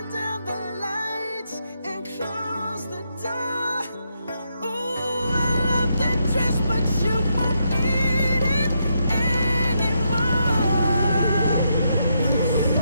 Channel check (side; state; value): both; inverted; correlation -0.80